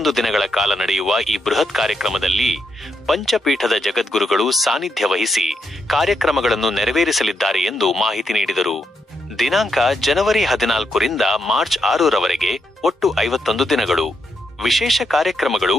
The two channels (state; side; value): normal; both; correlation 0.80